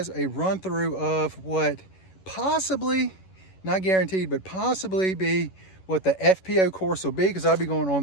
a run through of what possibly, not guaranteed, but possibly be what the FPO course will be, because I'll be going on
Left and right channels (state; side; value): late; right; 11 ms